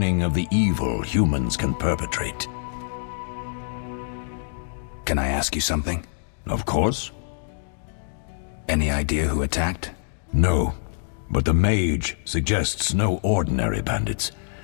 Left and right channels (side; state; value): right; silent; digital silence